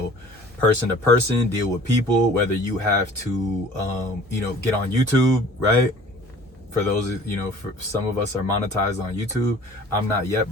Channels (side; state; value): both; normal; correlation 0.48